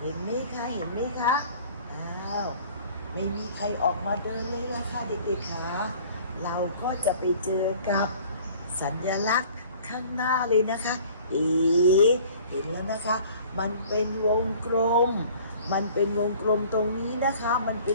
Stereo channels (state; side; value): inverted; both; correlation -0.50